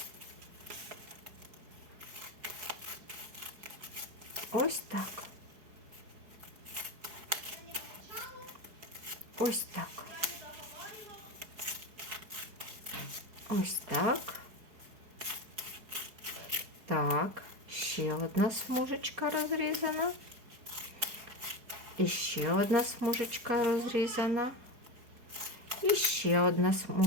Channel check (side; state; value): left; late; 4.7 ms